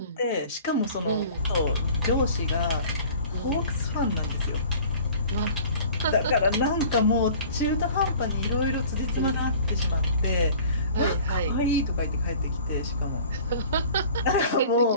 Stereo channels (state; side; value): inverted; both; correlation -0.47